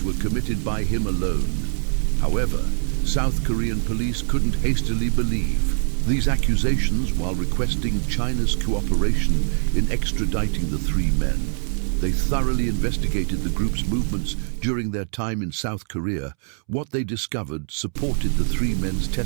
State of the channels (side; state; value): left; silent; 63 dB below the other